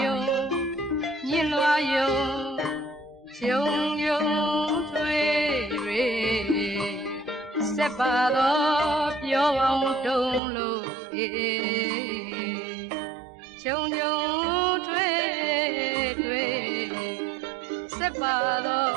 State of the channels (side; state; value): left; drops out; at 10.4 s